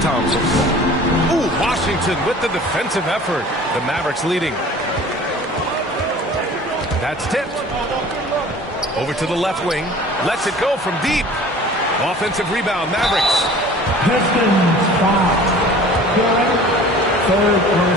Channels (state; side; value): normal; both; correlation 0.45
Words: Thompson. Ooh, Washington with the defensive effort. The Mavericks leading. That's tipped. Over to the left wing. Lets it go from deep. Offensive rebound, Mavericks. Pistons foul. Third